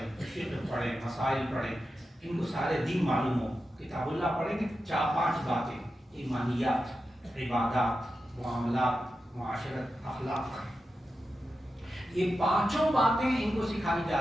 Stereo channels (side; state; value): both; normal; correlation 0.90